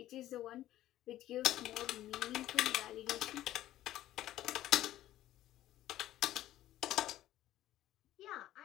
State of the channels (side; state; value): right; quieter; 13.9 dB